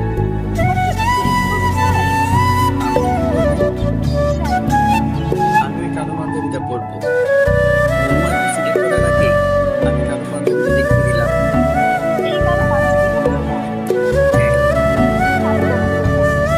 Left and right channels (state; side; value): identical; both; correlation 1.00